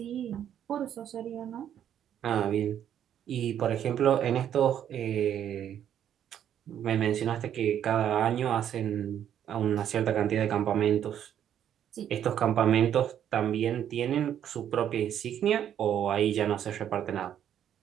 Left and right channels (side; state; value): left; quieter; 9.9 dB